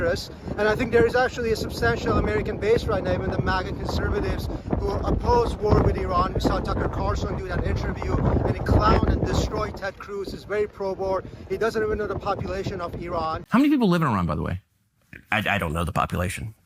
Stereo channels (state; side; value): identical; both; correlation 1.00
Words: And I think there is actually a substantial American base right now, even the MAGA conservatives who oppose war with Iran. We saw Tucker Carlson do that interview, and he clowned and destroyed Ted Cruz. He's very pro-war. He doesn't even know the population of Iran. How many people live in Iran, by the way? I don't know the population.